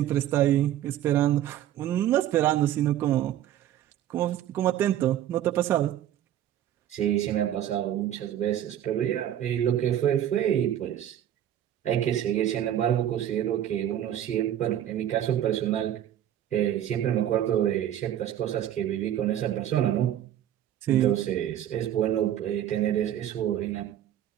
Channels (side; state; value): left; quieter; 11.4 dB